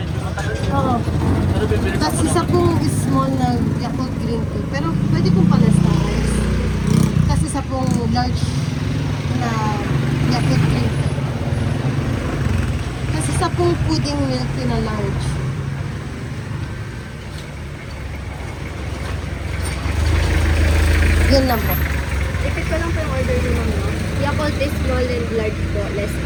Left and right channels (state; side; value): identical; both; correlation 1.00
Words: matagal. oo. Pero bibili Tapos isa pong small na Yakult green tea. Pero pwede pong palas-talas. Tapos isa pong large na Yakult green tea. Tapos isa pong pudding milk tea na large. Yun lang po. Repeat ko lang po yung order niyo, ma'am, no? Yakult is small and large po, less